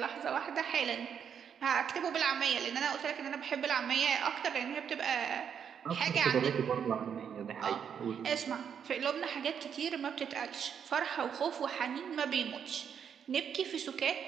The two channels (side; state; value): left; quieter; 7.8 dB